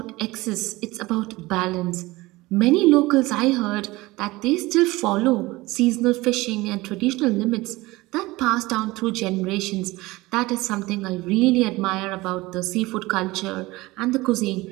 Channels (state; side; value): quieter; left; 20.5 dB